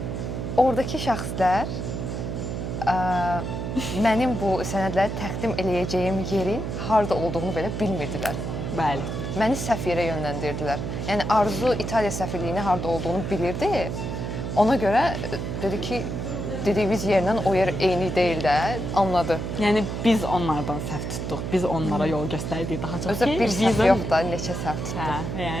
Oradakı şəxslər mənim bu sənədləri təqdim eləyəcəyim yerin harda olduğunu belə bilmirdilər. Bəli. Məni səhv yerə yönləndirdilər. Yəni Arzu İtaliya səfirliyinin harda olduğunu bilirdi. Ona görə dedi ki, dediyimiz yerlə o yer eyni deyil də, anladı. Yəni biz onlardan səhv tutduq. Biz onlara yol göstərdik daha çox. Özü bir səhv yox da, neçə səhv tutduq. Hə,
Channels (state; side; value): noise; right; hum, 4 dB below the sound